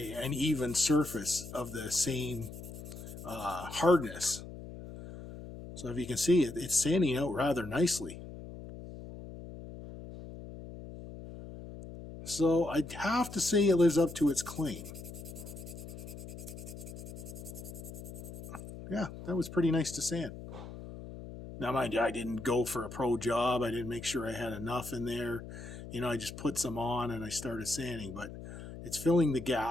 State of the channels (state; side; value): noise; left; hum, 12 dB below the sound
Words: even surface of the same hardness. So if you can see it, it's sanding out rather nicely. So I'd have to say it lives up to its claim. Yeah, that was pretty nice to sand. Now, mind you, I didn't go for a pro job. I didn't make sure I had enough in there. You know, I just put some on and I started sanding. But it's filling the